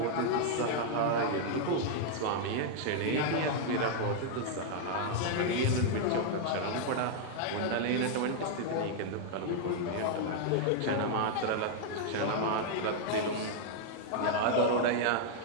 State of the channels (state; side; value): different; both; correlation -0.01